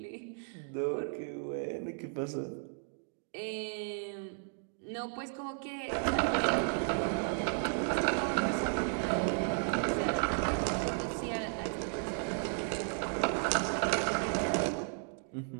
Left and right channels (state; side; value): silent; left; 55 dB below the other